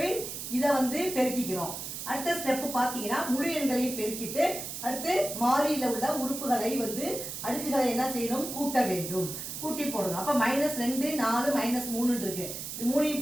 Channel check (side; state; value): right; noise; hiss, 7 dB below the sound